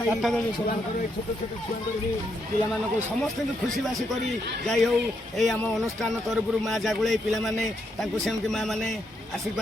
ଛୁଆଙ୍କର ଛୋଟ ଛୋଟ ଛୁଆଙ୍କର ବି ପିଲାମାନଙ୍କୁ ସମସ୍ତଙ୍କୁ ଖୁସିବାସି କରି ଯାଇ ହେଉ ଏଇ ଆମ ଅନୁଷ୍ଠାନ ତରଫରୁ ମା ଜାଗୁଳେଇ ପିଲାମାନେ ତାଙ୍କୁ ସେମିତି ମା ମାନେ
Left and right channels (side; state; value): both; normal; correlation 0.78